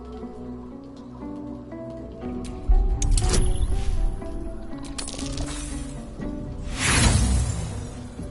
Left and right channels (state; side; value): identical; both; correlation 1.00